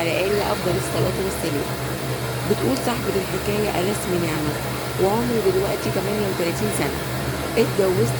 آله أفضل الصلاة والسلام. بتقول صاحبة الحكاية: أنا اسمي نعمة وعمري دلوقتي 38 سنة. اتجوزت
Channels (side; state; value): both; identical; correlation 1.00